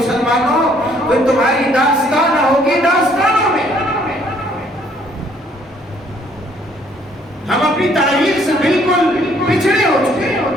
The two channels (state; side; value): normal; both; correlation 0.64